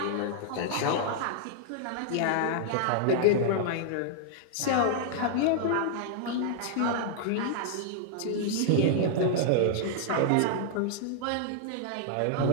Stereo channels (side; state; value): both; different; correlation -0.01